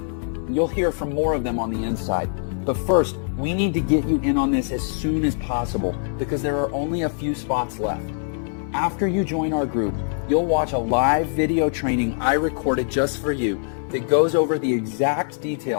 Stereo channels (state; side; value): silent; right; 58 dB below the other